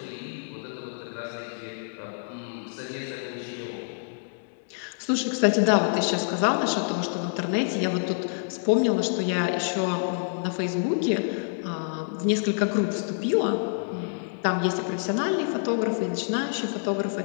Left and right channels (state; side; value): silent; right; digital silence